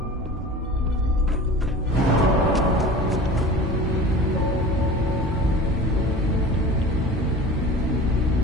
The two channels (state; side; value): normal; both; correlation 0.38